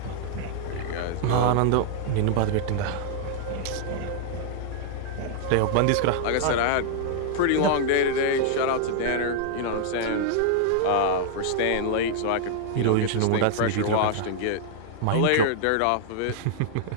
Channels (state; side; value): different; both; correlation -0.01